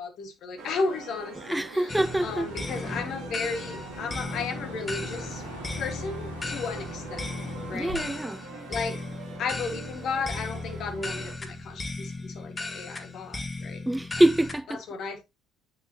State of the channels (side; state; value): both; normal; correlation 0.86